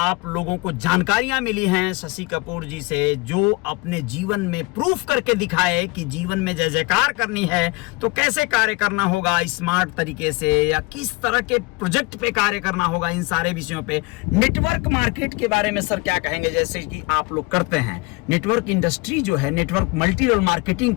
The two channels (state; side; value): quieter; right; 25.5 dB